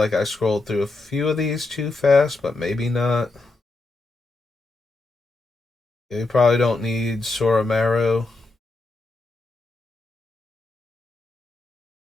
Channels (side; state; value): right; quieter; 3.3 dB